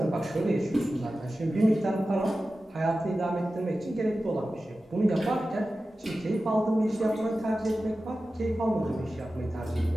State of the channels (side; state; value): both; normal; correlation 0.94